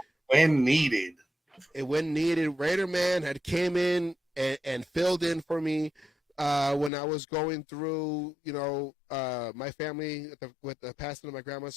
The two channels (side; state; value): right; drops out; at 6.9 s